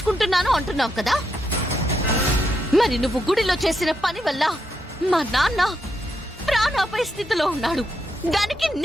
అంటున్నావు కదా. మరి నువ్వు గుడిలో చేసిన పని వల్ల మా నాన్న ప్రాణాపాయ స్థితిలో ఉన్నాడు. దానికి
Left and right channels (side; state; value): both; normal; correlation 0.81